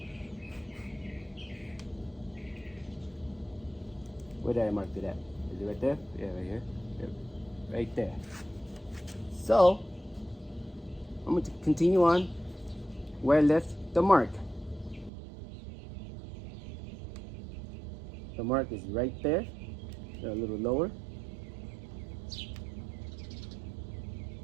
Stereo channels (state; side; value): drops out; left; at 15.1 s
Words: Where did I mark it at? Is it right there? Yeah, right here. Yep. Right there. So, I'm going to continue on where I left the mark. The mark is right there. A little lower.